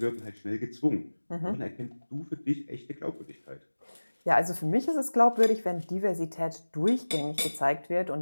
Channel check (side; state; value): both; inverted; correlation -1.00